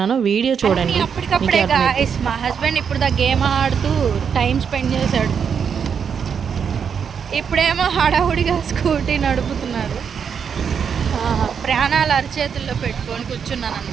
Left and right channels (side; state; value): left; quieter; 7.0 dB